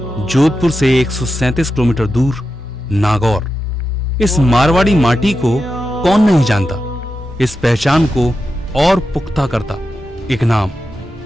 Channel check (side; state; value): both; normal; correlation 0.89